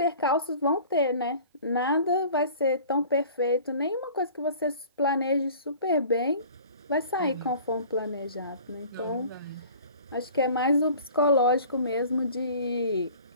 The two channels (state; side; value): inverted; both; correlation -0.46